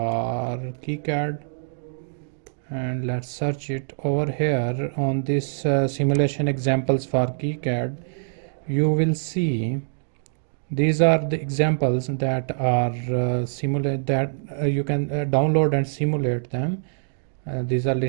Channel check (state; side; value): silent; left; digital silence